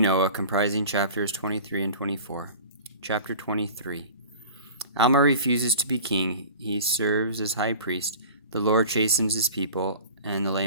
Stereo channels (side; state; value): both; inverted; correlation -0.40